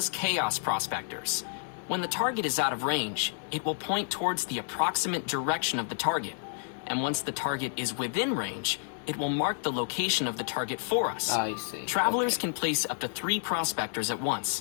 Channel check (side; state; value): right; silent; 58 dB below the other